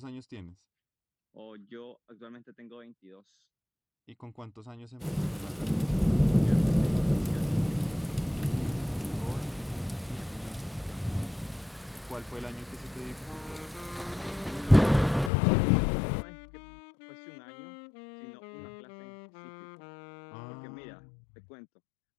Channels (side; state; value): right; drops out; at 15.3 s